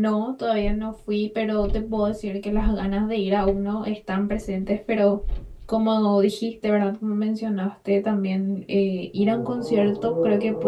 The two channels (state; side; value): identical; both; correlation 1.00